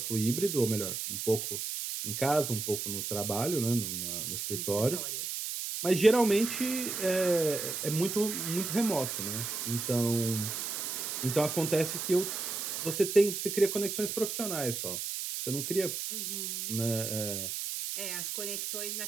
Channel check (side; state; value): right; noise; hiss, 4 dB below the sound